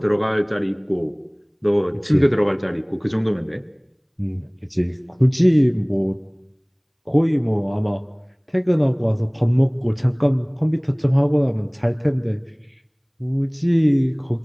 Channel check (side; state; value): both; identical; correlation 1.00